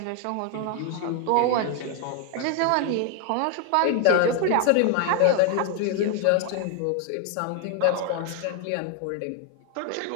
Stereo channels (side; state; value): both; different; correlation 0.01